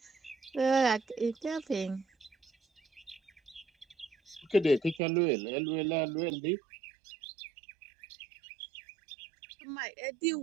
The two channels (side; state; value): left; drops out; at 5.0 s